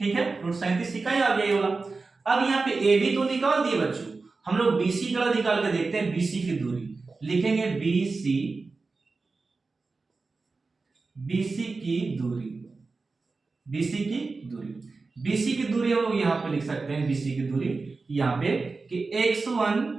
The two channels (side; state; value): left; quieter; 4.0 dB